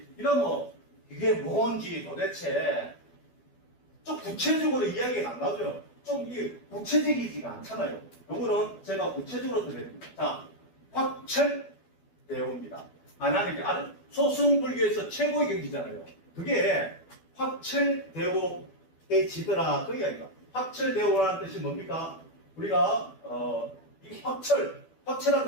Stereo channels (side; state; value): right; late; 12 ms